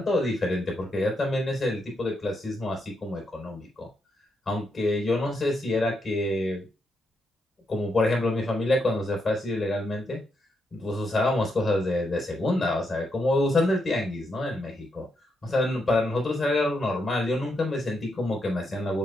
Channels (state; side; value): normal; both; correlation 0.81